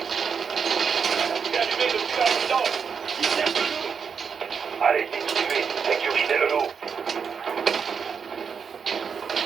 C'est allumé depuis la résidence. Qui cherche le loup? Allez, continuez. Sécurisez le loup.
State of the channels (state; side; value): quieter; left; 6.3 dB